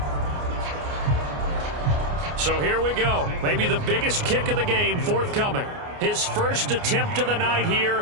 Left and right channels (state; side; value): late; left; 29 ms